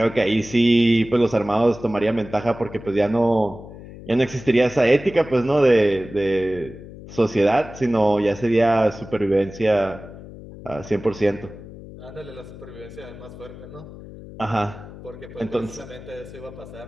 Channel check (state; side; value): noise; left; hum, 15 dB below the sound